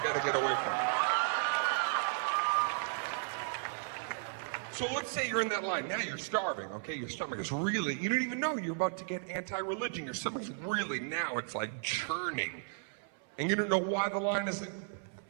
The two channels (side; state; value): left; silent; 55 dB below the other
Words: got to get away from. So let's say you're in that line. Now you're starving, okay? Your stomach is really, you don't even know you're about to get anti-religion. Your stomach's really, now it's like churning. And you don't know why the line isn't.